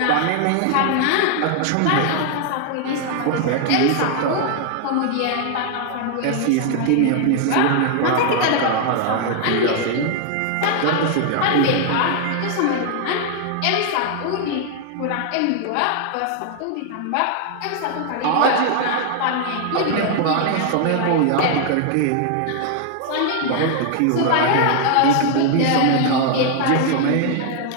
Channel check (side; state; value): both; different; correlation 0.00